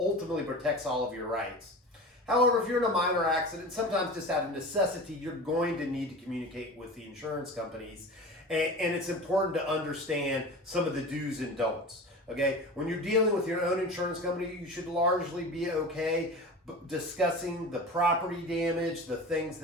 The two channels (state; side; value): normal; both; correlation 0.33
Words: protects all of your rights. However, if you're in a minor accident, sometimes just out of necessity, you're going to need to communicate with the insurance companies, and it's important to understand some of the do's and don'ts. Okay, when you're dealing with your own insurance company, you should largely be okay discussing the property damage, the things